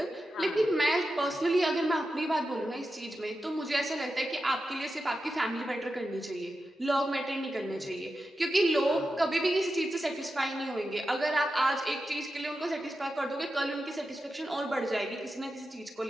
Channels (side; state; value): both; normal; correlation 0.90